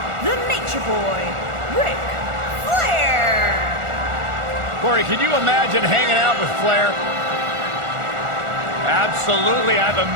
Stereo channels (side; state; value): left; late; 1.4 ms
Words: the Nature Boy, Ric Flair. Corey, can you imagine hanging out with Flair? Absolutely, I've